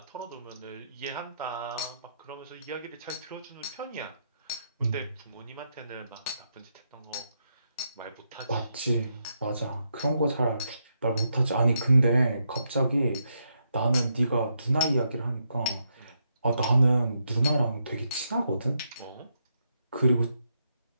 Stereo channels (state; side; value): inverted; both; correlation -0.80